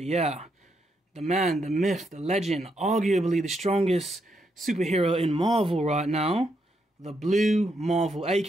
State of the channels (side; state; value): both; normal; correlation 0.79